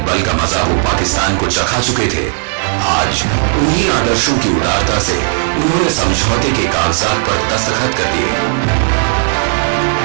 बल का मजा वो पाकिस्तान को चखा चुके थे, आज उन्हीं आदर्शों की उदारता से उन्होंने समझौते के कागजात पर दस्तखत कर दिए।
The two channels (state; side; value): silent; left; digital silence